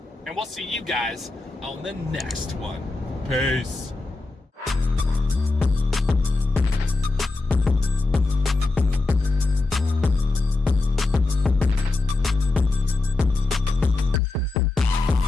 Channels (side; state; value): right; quieter; 3.3 dB